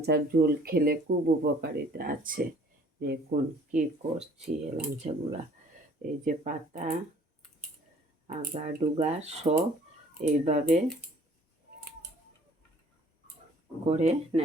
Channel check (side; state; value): both; normal; correlation 0.55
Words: ঝোল খেলে খুব উপকারিতা আছে। দেখুন কি করছি। এলাঞ্চাগুলা এই যে পাতা আগা ডুগা সব এইভাবে করে